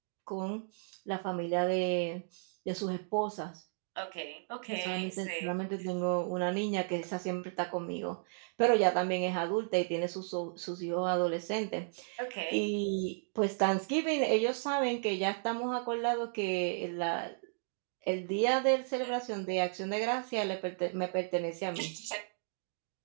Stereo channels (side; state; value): left; silent; digital silence